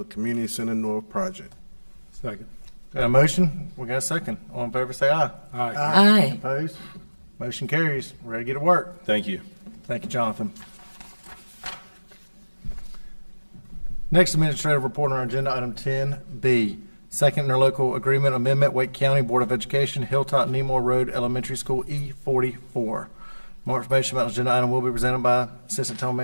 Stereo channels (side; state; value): both; inverted; correlation -1.00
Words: Community Center North project. Second. Got a motion? We got a second. All in favor, say aye. Aye. Aye. Opposed? Motion carries. We're ready to get to work. Thank you. Thank you, Jonathan. Next administrative report on our agenda, item 10B, second interlocal agreement amendment, Wake County Board of Education, Hilltop Nemore Road Elementary School, E44. More information about the agenda item will be presented by Assistant Town